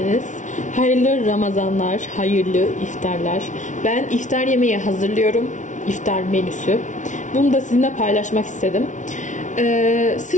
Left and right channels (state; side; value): late; right; 0.37 ms